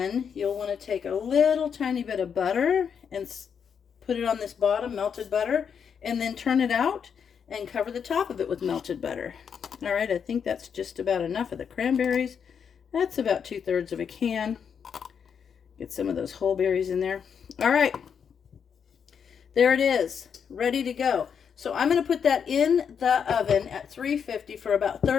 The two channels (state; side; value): quieter; right; 7.1 dB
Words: you'll want to take a little tiny bit of butter and put it on this bottom, melted butter, and then turn it out and cover the top of it with melted butter. All right, I think that's just about enough of the cranberries. That's about 2/3 of a can. Get some of those whole berries in there. All right, there it is, ready to go. So I'm going to put that in the oven at 350 for about